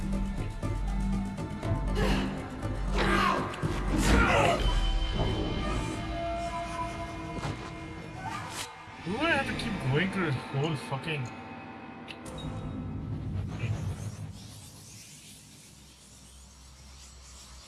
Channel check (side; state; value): both; identical; correlation 1.00